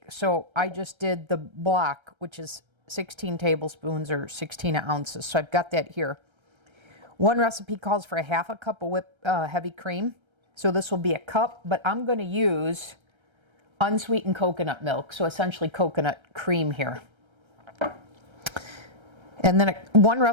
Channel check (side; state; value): left; late; 1.3 ms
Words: So I just did the block, which is 16 tablespoons or 16 ounces. So I've got that here. One recipe calls for a half a cup of heavy cream. So this will be a cup, but I'm going to use unsweetened coconut milk. So essentially coconut cream here. And then one